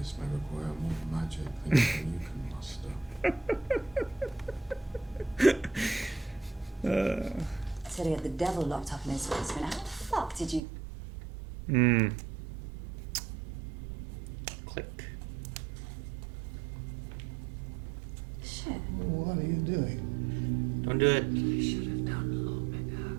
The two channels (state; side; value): drops out; left; at 10.6 s